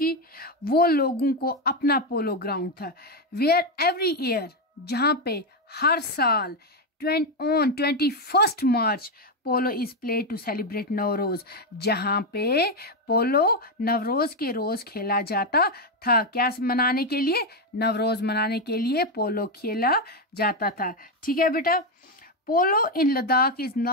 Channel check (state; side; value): normal; both; correlation 0.06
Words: वो लोगों को अपना पोलो ग्राउंड था। वेयर एवरी ईयर, जहाँ पे हर साल on 21 March polo is play to celebrate Navroz, जहाँ पे पोलो नवरोज के रोज खेला जाता था। क्या मनाने के लिए? नवरोज मनाने के लिए पोलो खेला जाता था। ठीक है बेटा। Polo in Ladakh is